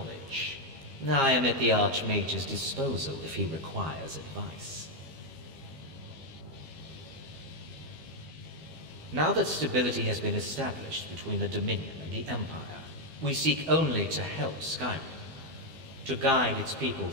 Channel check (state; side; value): late; left; 12 ms